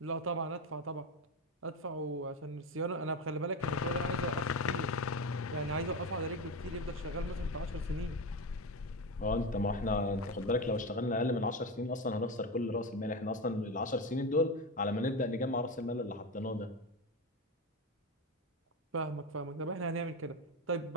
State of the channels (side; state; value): both; normal; correlation 0.18